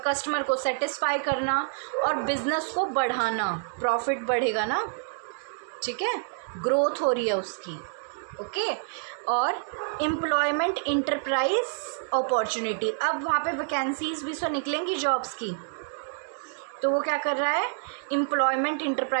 कस्टमर को सेटिस्फाई करना, और बिजनेस को बढ़ाना, प्रॉफिट बढ़ेगा ना। ठीक है, ग्रोथ हो रही है उसकी। ओके, और एम्प्लॉयमेंट, इंटरप्राइज अपॉर्चुनिटी। अब वहाँ पे वैकेंसीज भी तो निकलेंगी जॉब्स की, तो वो क्या कर रहा है? एम्प्लॉयमेंट,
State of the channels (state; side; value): silent; left; digital silence